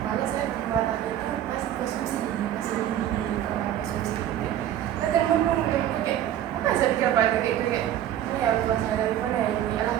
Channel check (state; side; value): quieter; left; 11.3 dB